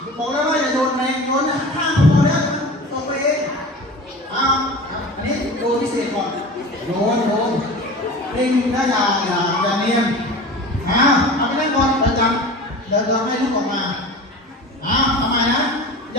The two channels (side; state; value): both; normal; correlation 0.36